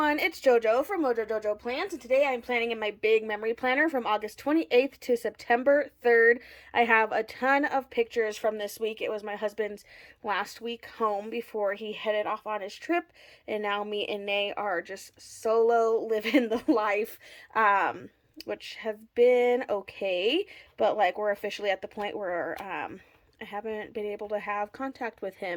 it's JoJo from Mojo Jojo Plans, and today I'm planning in my big memory planner from August 28th to September 3rd. I have a ton of pictures from this week. It was my husband's last week home before he headed off on his trip, and now me and Nay are just solo living the life, which has been okay, but like we're officially at the point where I haven't been able to have contact with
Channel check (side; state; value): both; identical; correlation 1.00